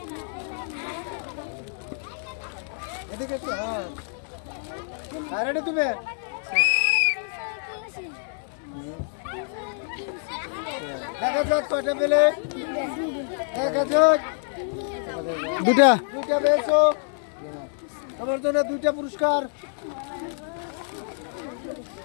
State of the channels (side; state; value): right; silent; digital silence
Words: এদিকে এসো, হ্যাঁ। আর রেডি তুমি? দেখা যাক কয়টা পেলে। দেখা যাক। দুইটা দুইটা পেয়েছো। তোমার জন্য দুইটা পুরস্কার।